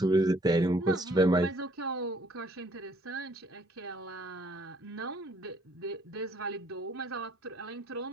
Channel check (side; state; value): both; normal; correlation 0.63